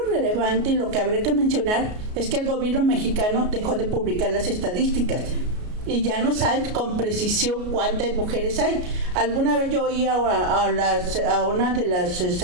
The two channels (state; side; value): late; left; 33 ms